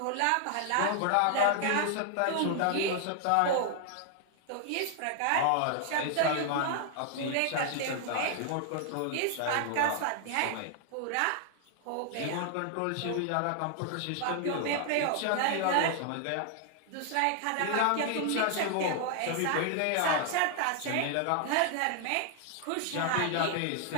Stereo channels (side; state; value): both; different; correlation 0.00